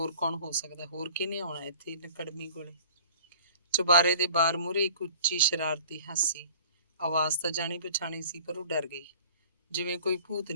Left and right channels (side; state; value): both; inverted; correlation -0.47